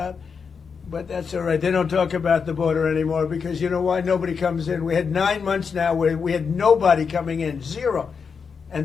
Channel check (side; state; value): right; quieter; 5.8 dB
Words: but that's all right. They don't talk about the border anymore because you know why? Nobody comes in. We had 9 months now where we had nobody coming in, zero.